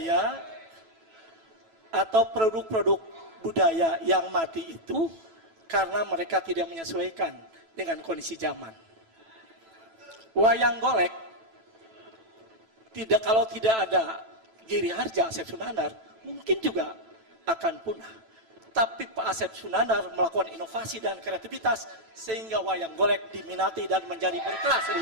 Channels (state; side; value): late; left; 9.1 ms